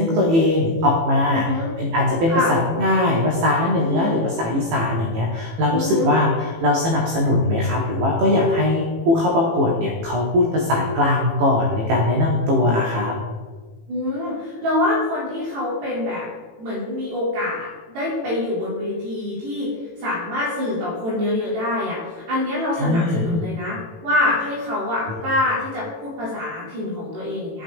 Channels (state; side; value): late; left; 18 ms